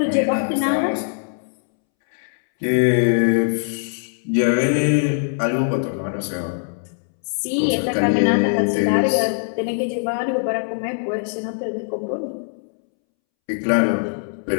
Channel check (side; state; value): right; silent; 65 dB below the other